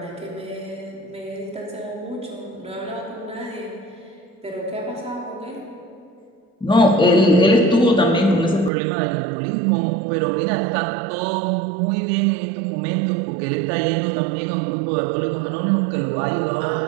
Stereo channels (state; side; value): drops out; left; at 8.7 s